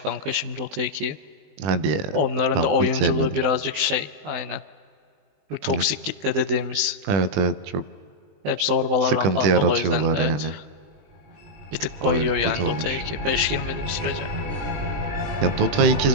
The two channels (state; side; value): late; left; 20 ms